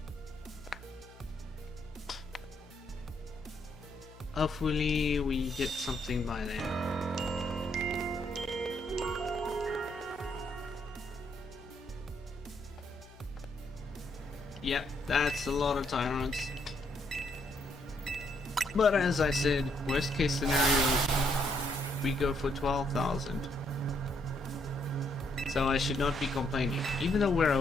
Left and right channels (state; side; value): noise; left; hum, 21 dB below the sound